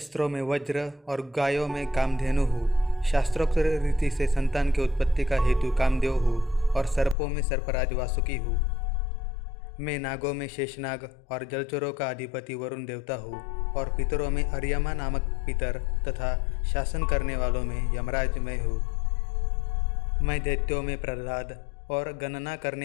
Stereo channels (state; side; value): drops out; right; at 7.2 s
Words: में वज्र और गायों में कामधेनु हूँ। शास्त्रोक्त रीति से संतान की उत्पत्ति का हेतु कामदेव हूँ और सर्पों में सर्पराज वासुकी हूँ। मैं नागों में शेषनाग और जलचरों का अधिपति वरुण देवता हूँ और पितरों में अर्यमा नामक पितर तथा शासन करने वालों में यमराज मैं हूँ। मैं दैत्यों में प्रहलाद और गणना